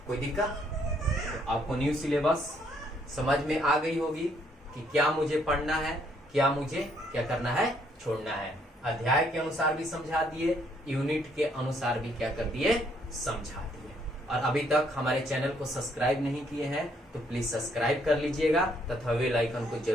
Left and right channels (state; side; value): normal; both; correlation 0.69